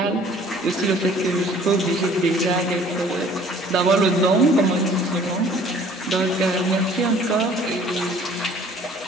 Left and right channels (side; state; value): both; normal; correlation 0.53